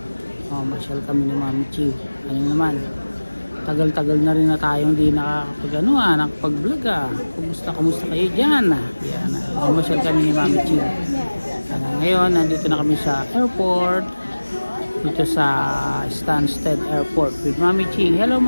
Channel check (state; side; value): inverted; both; correlation -1.00